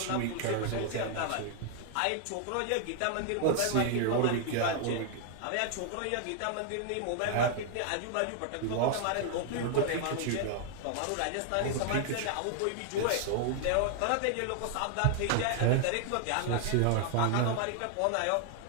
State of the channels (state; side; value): different; both; correlation 0.00